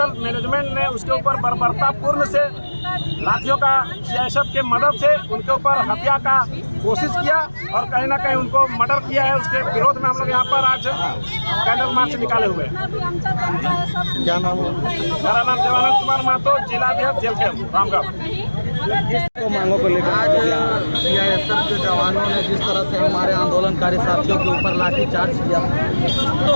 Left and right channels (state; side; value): inverted; both; correlation -1.00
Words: मैनेजमेंट ने उसके ऊपर बर्बरतापूर्ण से लाठियों का सीआईएसएफ के मदद से उनके ऊपर हत्या का कोशिश किया और कहीं ना कहीं उनको मर्डर किया है। उसके विरोध में हम लोग यहाँ पर आज कैंडल मार्च निकाले हुए हैं। क्या नाम है? मेरा नाम देवानंद कुमार महतो, जिलाध्यक्ष जेएलकेएम रामगढ़। मांगों को लेकर आज सीआईएसएफ के जवानों ने जिस तरह से हमारे आंदोलनकारी साथियों के ऊपर लाठीचार्ज किया